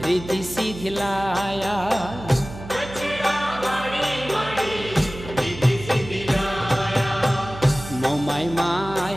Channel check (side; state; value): right; noise; hum, 13 dB below the sound